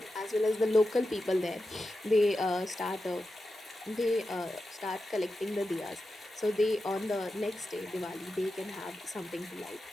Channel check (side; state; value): both; normal; correlation 0.91